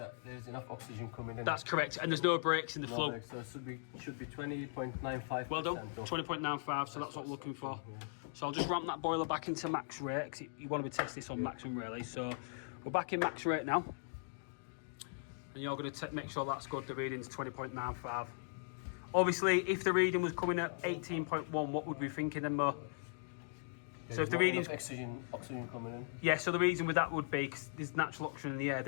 there's enough oxygen coming in. That's correct, and there's no breaks in the flow. So it should be 20.95%. Well done, 20.95, so that's what we're looking for. Yeah. So I'll just ramp that boiler back into max rate, because you want to be testing this on maximum really. So we're back in max rate now. And you're going to make sure that's good, the reading's 20.95. Obviously, if the reading was coming at 18.1, what would we be thinking then, Mo? So if the readings, oxygen coming in. yeah, so the reason with that would be because there's natural oxygen in the air.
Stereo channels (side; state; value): right; silent; digital silence